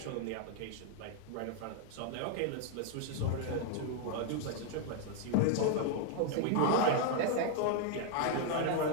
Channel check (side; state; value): both; different; correlation 0.00